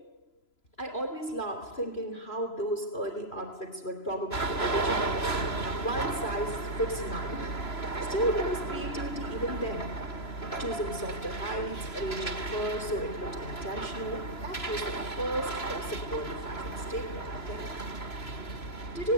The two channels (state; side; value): late; right; 3.0 ms